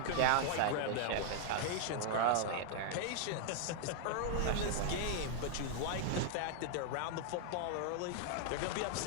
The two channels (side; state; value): both; different; correlation 0.00